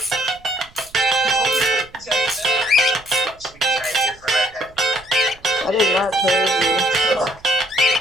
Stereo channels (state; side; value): noise; right; rumble, 26 dB below the sound